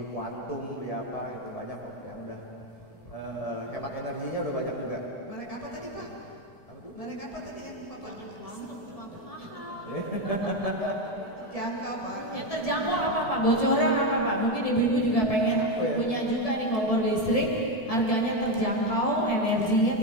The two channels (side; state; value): right; late; 1.7 ms